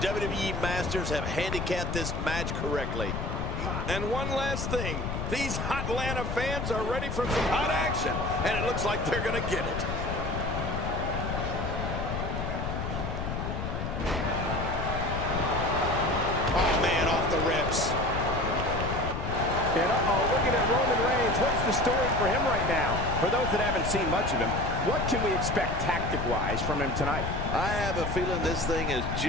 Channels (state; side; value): noise; left; rumble, 3 dB below the sound